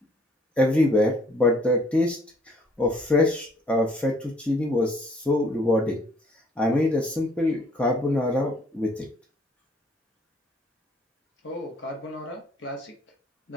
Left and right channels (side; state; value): both; normal; correlation 0.61